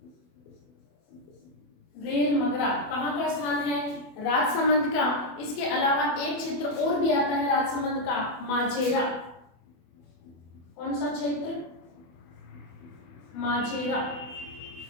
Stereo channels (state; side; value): late; right; 24 ms